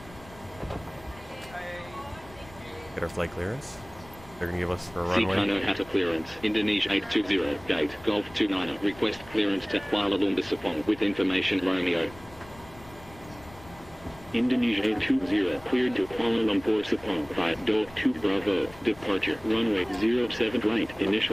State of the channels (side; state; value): left; noise; rumble, 21 dB below the sound